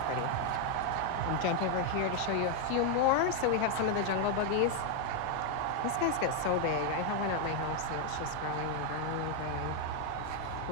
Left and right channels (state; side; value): different; both; correlation 0.01